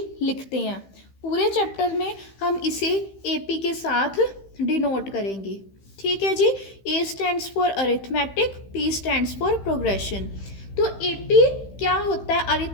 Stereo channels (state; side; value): late; right; 15 ms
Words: लिखते हैं। पूरे चैप्टर में हम इसे एपी के साथ डिनोट करेंगे। ठीक है जी। A stands for arithmetic, P stands for progression. तो एपी क्या होता है,